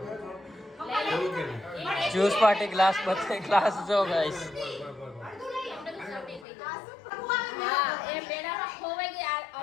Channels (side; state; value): right; drops out; at 6.5 s